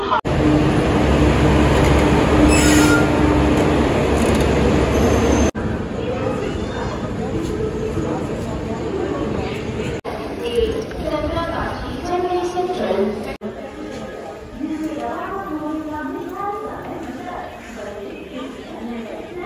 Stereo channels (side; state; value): both; identical; correlation 1.00